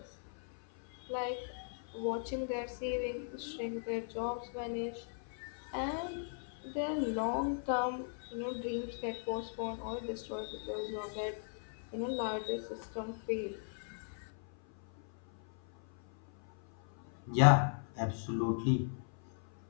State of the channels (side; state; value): right; silent; 53 dB below the other